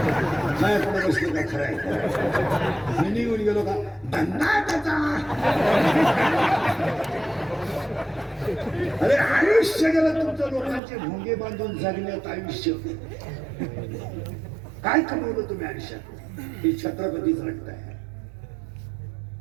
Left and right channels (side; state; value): left; drops out; at 10.8 s